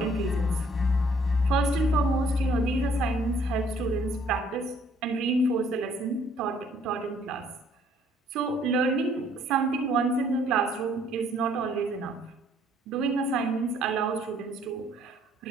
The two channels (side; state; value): both; normal; correlation 0.62